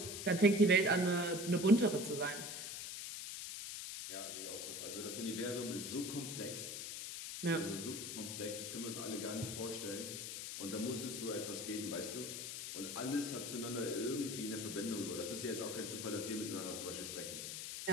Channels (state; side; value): noise; left; hiss, 6 dB below the sound